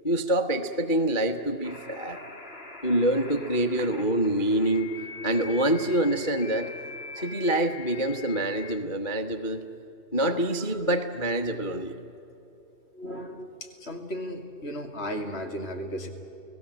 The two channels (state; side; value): late; right; 2.4 ms